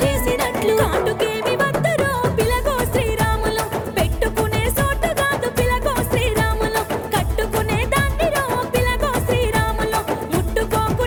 చేసినట్లు కాటుకేమి వద్దరో పిలగో శ్రీరాములు పెట్టుకునే సోటు కాదు పిలగో శ్రీరాములు కట్టుకునే దాన్నిరో పిలగో శ్రీరాములు ముట్టుకోకు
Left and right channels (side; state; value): both; identical; correlation 1.00